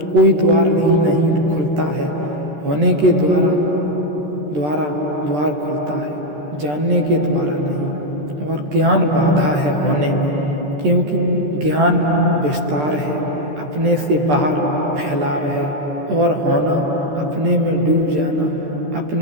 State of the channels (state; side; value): late; left; 13 ms